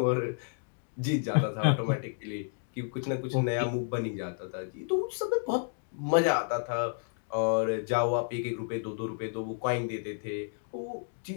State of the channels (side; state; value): right; silent; digital silence